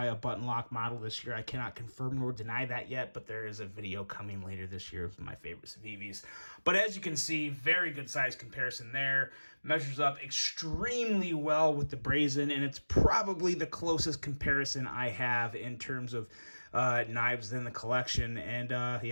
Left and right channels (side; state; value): both; inverted; correlation -1.00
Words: a button lock model this year. I cannot confirm nor deny that yet, but there is a video coming later this year of my favorite Civivis. But as you can see, very good size comparison there. Measures up extremely well with the Brazen, and it's probably the closest comparison I have in terms of knives in the collection, and